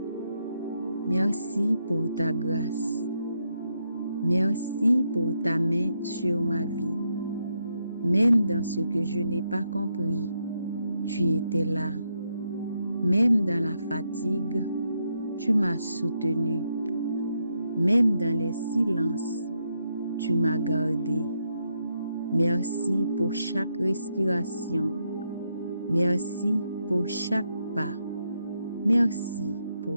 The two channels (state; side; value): inverted; both; correlation -0.80